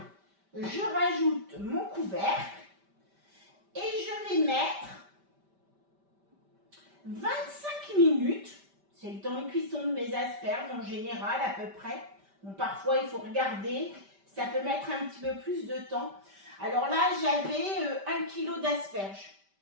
je rajoute mon couvercle et je vais mettre 25 minutes. C'est le temps de cuisson de mes asperges en général à peu près. Bon, parfois il faut regarder, ça peut mettre un petit peu plus de temps. Alors là, j'avais 1 kg d'asperges.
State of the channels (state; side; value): late; left; 5.1 ms